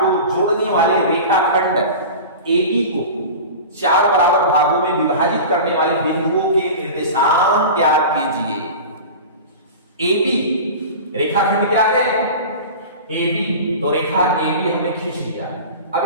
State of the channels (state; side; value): inverted; both; correlation -0.33